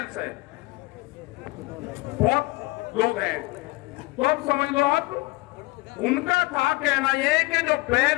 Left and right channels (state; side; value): quieter; right; 21.9 dB